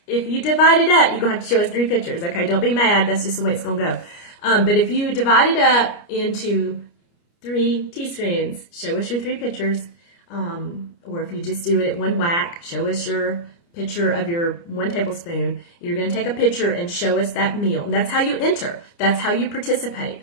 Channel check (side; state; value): right; late; 29 ms